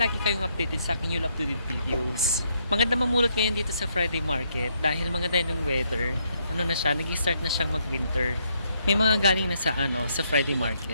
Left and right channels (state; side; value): inverted; both; correlation -0.74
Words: kayong updated sa aking new up-to-date videos. Maganda mamulot ngayon dito sa Friday Market dahil maganda yung weather. Ano na siya, nag-start na siyang mag-winter. May mga galing na sa Friday